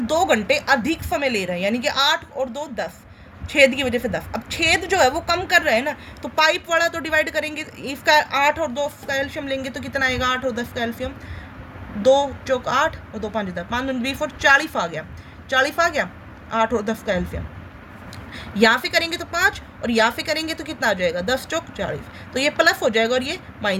2 घंटे अधिक समय ले रहे हैं, यानी कि 8 और 2 10, छेद की वजह से 10। अब छेद जो है वो कम कर रहा है ना, तो पाइप वाला तो डिवाइड करेंगे, इसका 8 और 2 का एल्शियम लेंगे तो कितना आएगा, 8 और 10 का एल्शियम, 2 चौक 8 और 2 5 10, 5 दूनी 20 और 40 आ गया, 40 आ गया, 8 और 10 का एल्शियम। यहाँ पे करेंगे तो 5 और यहाँ पे करेंगे तो कितना आ जाएगा, 10 चौक 40, तो ये प्लस हो जाएगा और ये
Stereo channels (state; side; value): identical; both; correlation 1.00